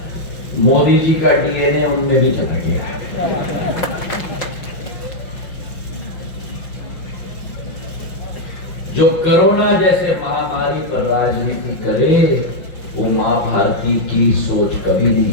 मोदी जी का डीएनए उनमें भी चला गया। जो कोरोना जैसे महामारी पर राजनीति करे वो मां भारती की सोच कभी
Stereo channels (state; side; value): late; right; 6.0 ms